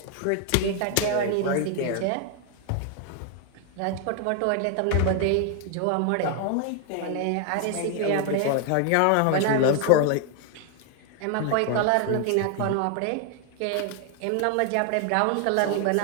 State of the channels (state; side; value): different; both; correlation 0.00